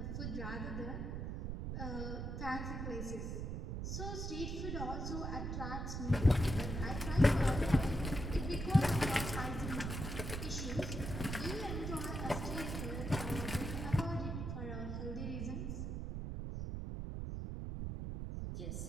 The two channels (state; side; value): noise; right; rumble, 3 dB below the sound